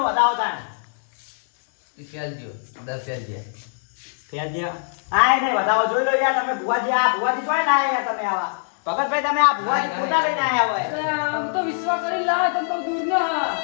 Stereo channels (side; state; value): right; silent; 64 dB below the other